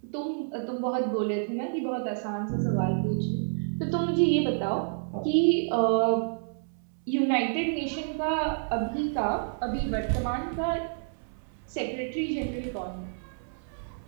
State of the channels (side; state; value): left; silent; 59 dB below the other